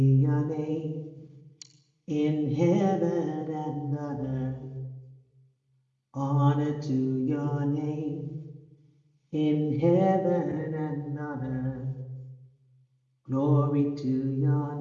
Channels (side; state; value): both; identical; correlation 1.00